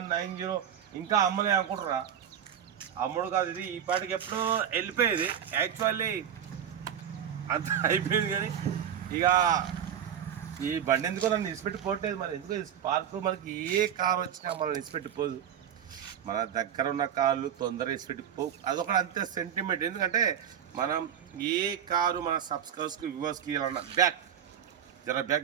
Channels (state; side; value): quieter; left; 9.2 dB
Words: ఇంకా అమ్మలే అనుకుంటారా? అమ్ముడు కాదు ఇది, ఈ పాటికి ఎప్పుడో వెళ్ళిపోయేది. యాక్చువల్లీ అంత అయిపోయింది, కానీ ఇక ఈ బండి ఎందుకో నన్ను నిలిచిపెట్టిపోవట్లేదు. మరి ఎందుకో స్పార్క్ మనకి ఏ కారు వచ్చినా మనం నిలిచిపెట్టిపోదు. మన దగ్గర ఉన్న కార్లు తొందరగా నిలిచిపెట్టిపోవు. అదొకటి అంతే సెంటిమెంట్. ఎందుకంటే మనం ఏ కారు మన సబ్స్క్రైబర్స్కి వ్యూవర్స్కి ఇవ్వాలన్నా బ్యాక్